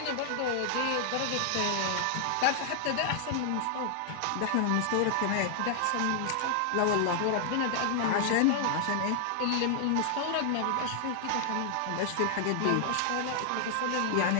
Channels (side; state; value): both; different; correlation -0.01